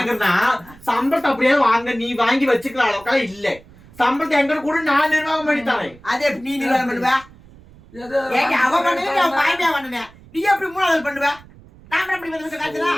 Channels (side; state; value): right; noise; rumble, 23 dB below the sound